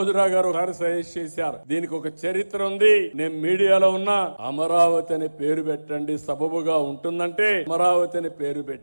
గారు సజెస్ట్ చేశారు, దీనికి ఒక చరిత్ర ఉంది, నేను మీడియాలో ఉన్నా, అమరావతి అనే పేరు పెట్టండి సబబుగా ఉంటుందంటే అమరావతి అనే పేరు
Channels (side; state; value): both; inverted; correlation -1.00